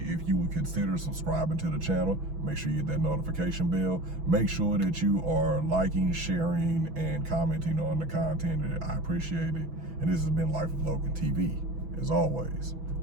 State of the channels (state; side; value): late; left; 6.1 ms